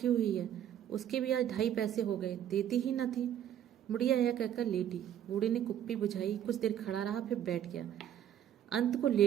हुई है, उसके भी आज 2.5 पैसे हो गए, देती ही न थी। बुढ़िया यह कहकर लेटी। बूढ़े ने कुप्पी बुझाई, कुछ देर खड़ा रहा, फिर बैठ गया, अंत को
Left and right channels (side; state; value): left; quieter; 10.4 dB